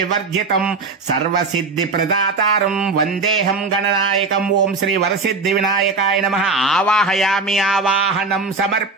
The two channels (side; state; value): left; quieter; 4.0 dB